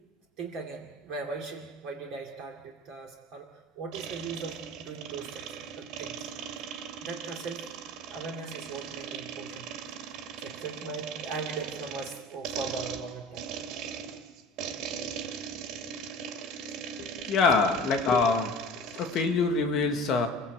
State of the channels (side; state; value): both; normal; correlation 0.40